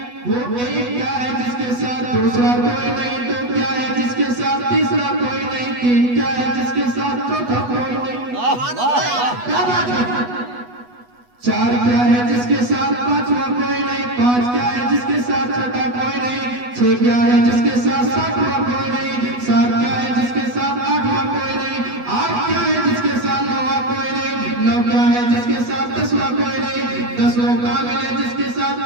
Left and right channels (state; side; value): late; left; 8.2 ms